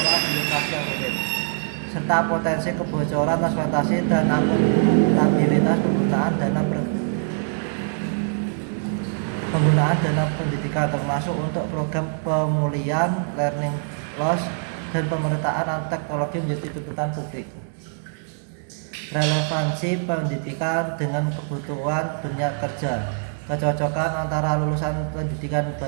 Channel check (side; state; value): left; silent; digital silence